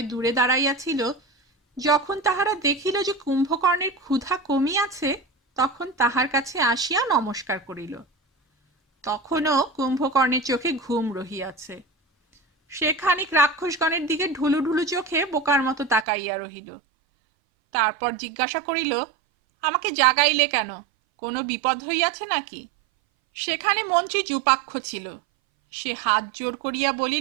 দূরে দাঁড়াইয়াছিল। যখন তাহারা দেখিল যে কুম্ভকর্ণের ক্ষুধা কমিয়াছে, তখন তাহার কাছে আসিয়া নমস্কার করিল। তখনও কুম্ভকর্ণের চোখে ঘুম রহিয়াছে। সে খানিক রাক্ষসগণের দিকে ঢুলু ঢুলু চোখে বোকার মতো তাকাইয়া রহিল। তারপর জিজ্ঞাসা করিল, আমাকে জাগাইলে কেন? কোনো বিপদ হইয়াছে নাকি? সেখানে মন্ত্রী যুপাক্ষ ছিল। সে হাত জোর করিয়া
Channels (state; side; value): drops out; left; at 16.1 s